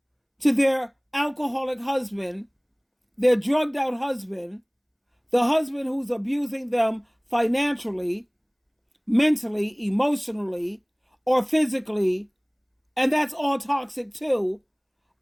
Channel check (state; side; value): identical; both; correlation 1.00